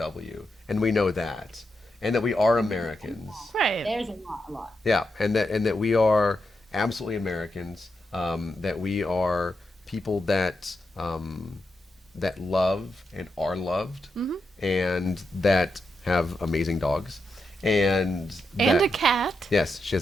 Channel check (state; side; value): normal; both; correlation 0.85